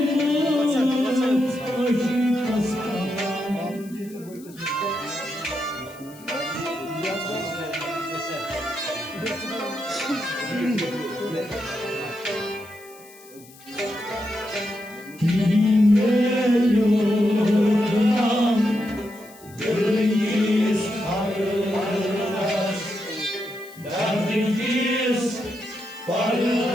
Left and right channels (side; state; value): left; noise; hiss, 23 dB below the sound